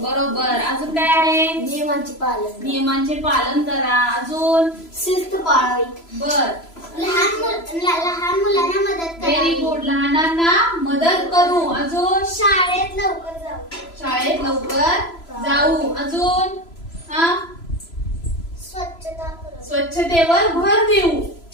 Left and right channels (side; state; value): right; late; 3.0 ms